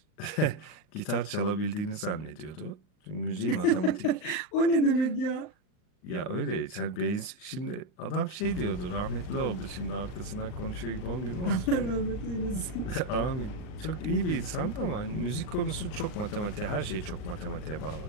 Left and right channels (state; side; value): late; right; 39 ms